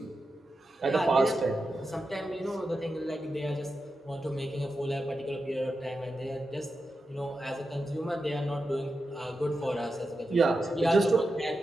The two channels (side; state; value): both; normal; correlation 0.89